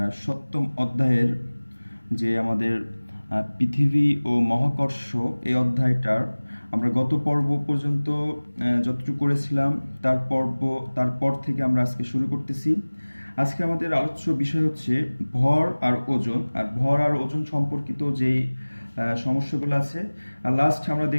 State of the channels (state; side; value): inverted; both; correlation -1.00